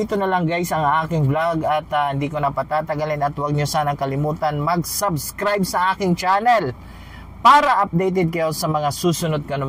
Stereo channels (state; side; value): identical; both; correlation 1.00